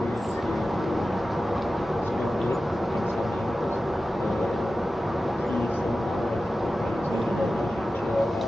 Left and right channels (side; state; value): both; normal; correlation 0.94